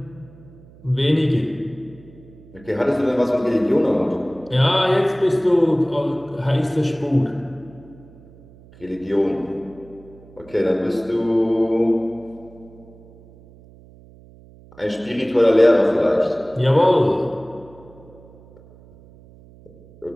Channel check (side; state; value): right; noise; hum, 23 dB below the sound